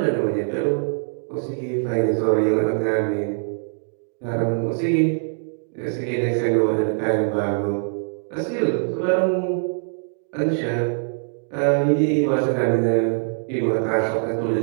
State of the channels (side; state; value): left; silent; digital silence